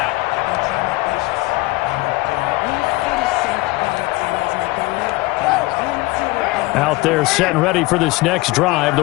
Out there set and ready for this next drive, the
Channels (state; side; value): quieter; right; 21.6 dB